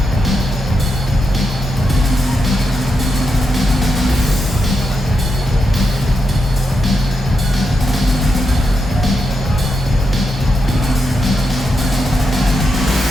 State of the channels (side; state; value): both; normal; correlation 0.85